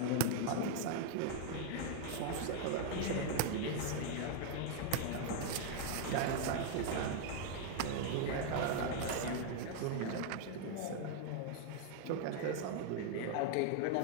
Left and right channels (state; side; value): different; both; correlation 0.00